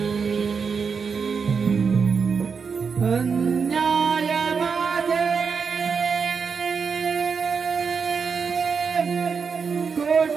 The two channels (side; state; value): left; quieter; 5.7 dB